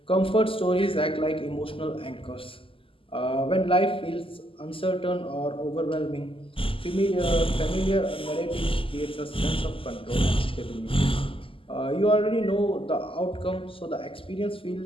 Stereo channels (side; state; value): right; late; 0.26 ms